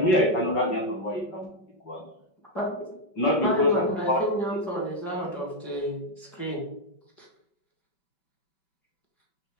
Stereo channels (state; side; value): late; right; 5.3 ms